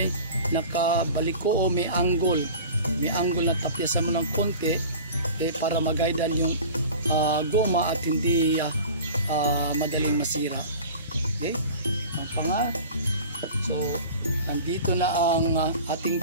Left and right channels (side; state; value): both; inverted; correlation -0.39